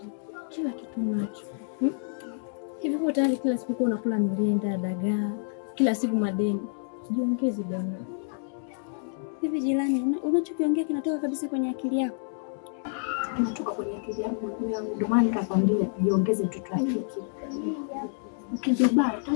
kila kitu nacho. Hivi kwa tayari kila siku unakula mrenda, dagaa, kila siku madeni. Jiongeze bwana. Hivi jirani, unachokiongea kinatoka kabisa kwenye akili yako? Kinatoka kwenye akili yangu, ndio maana nikakwambia jiongeze mtoto wake. Ukijibaya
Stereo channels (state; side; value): silent; right; digital silence